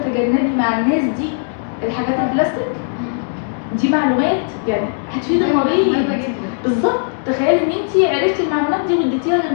مع الناس دي الحاجات البلاستيك دي. معلومات يعني هتفيد المريض بالظبط. تخيلي ان انت عرفتي المعلومات دي واديتيها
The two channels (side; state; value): right; silent; 66 dB below the other